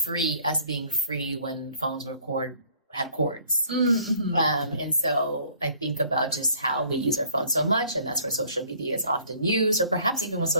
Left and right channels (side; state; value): both; inverted; correlation -0.57